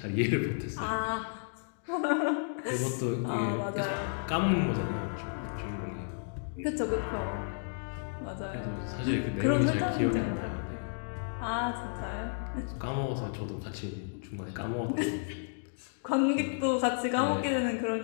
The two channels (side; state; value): right; silent; digital silence